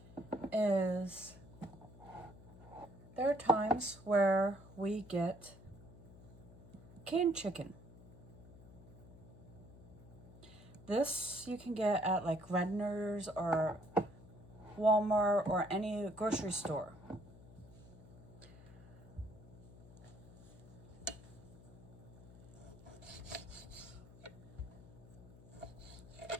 is there are times where we get canned chicken. This you can get at like Redner's or Walmart or any grocery store.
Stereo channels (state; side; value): noise; left; hum, 19 dB below the sound